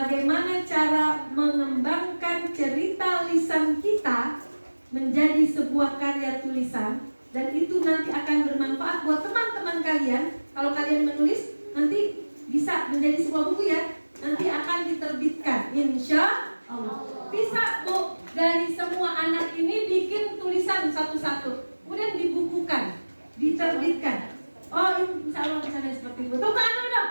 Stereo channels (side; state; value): both; inverted; correlation -1.00